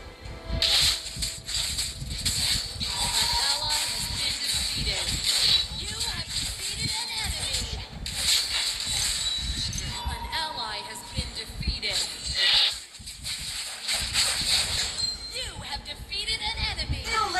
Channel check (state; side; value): identical; both; correlation 1.00